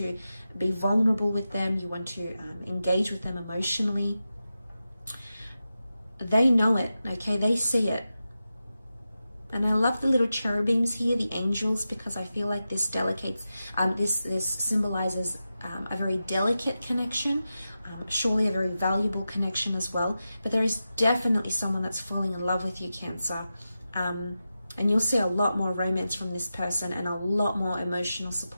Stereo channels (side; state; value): both; inverted; correlation -0.92